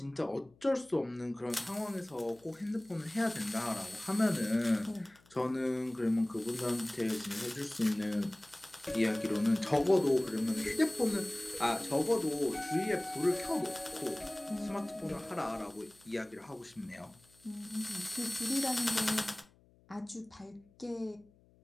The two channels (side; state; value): left; noise; hum, 29 dB below the sound